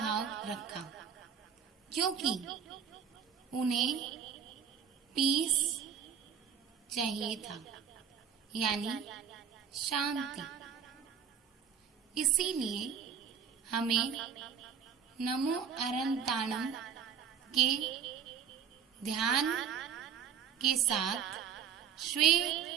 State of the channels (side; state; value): left; quieter; 7.6 dB